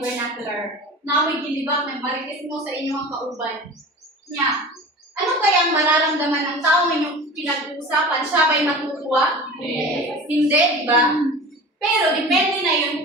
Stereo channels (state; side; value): normal; both; correlation 0.36